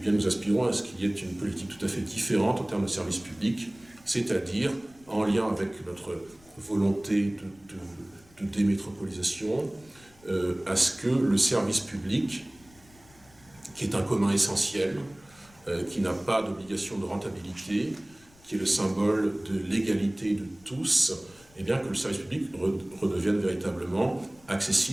nous aspirons à ce qu'il y ait une politique tout à fait différente en termes de services publics, c'est-à-dire en lien avec notre volonté de démétropolisation, à ce que le service public, qui est un commun essentiel, qui n'a pas d'obligation de rentabilité, qui est le symbole de l'égalité de tous, eh bien que le service public redevienne véritablement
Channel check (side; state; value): left; noise; rumble, 27 dB below the sound